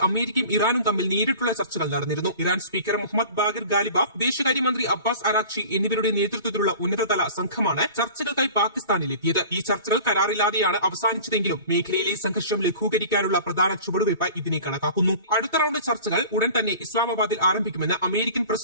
അമേരിക്കയും ഇറാനും തമ്മിൽ നേരിട്ടുള്ള ചർച്ചകൾ നടന്നിരുന്നു. Iran speaker Mohammad Bagher Ghalibaf, വിദേശകാര്യമന്ത്രി അബ്ബാസ് അറാഖ്ചി എന്നിവരുടെ നേതൃത്വത്തിലുള്ള ഉന്നതതല സംഘമാണ് ചർച്ചകൾക്കായി പാകിസ്ഥാനിലെത്തിയത്. ഈ ചർച്ചകൾ കരാറില്ലാതെയാണ് അവസാനിച്ചതെങ്കിലും മേഖലയിലെ സംഘർഷം ലഘൂകരിക്കാനുള്ള പ്രധാന ചുവടുവയ്പായി ഇതിനെ കണക്കാക്കുന്നു. അടുത്ത റൌണ്ട് ചർച്ചകൾ ഉടൻ തന്നെ ഇസ്ലാമാബാദിൽ ആരംഭിക്കുമെന്ന് അമേരിക്കൻ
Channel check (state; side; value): inverted; both; correlation -0.42